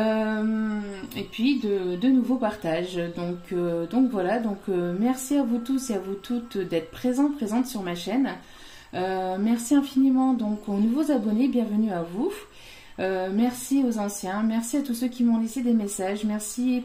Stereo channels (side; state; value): both; identical; correlation 1.00